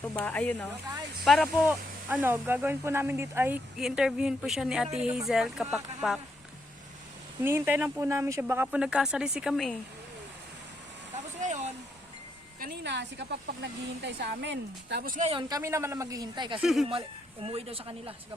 Ayun o. Para po, gagawin po namin dito ay i-interviewin po siya ni Ate Hazel Kapakpak. Hinihintay lang po namin siya. Baka po nagkasalisi kami eh. Tapos ngayon, kanina si Kapakpak naghihintay sa amin. Tapos ngayon, kami naman na maghihintay kasi umuwi daw sa kanila si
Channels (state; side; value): normal; both; correlation 0.77